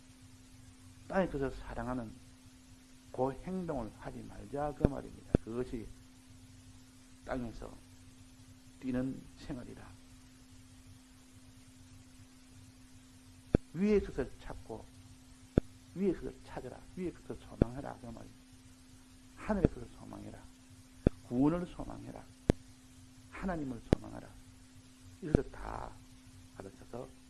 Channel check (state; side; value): identical; both; correlation 1.00